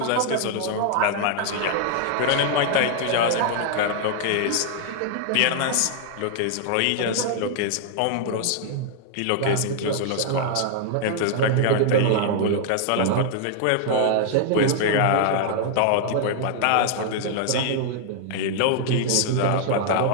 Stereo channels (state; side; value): different; both; correlation 0.00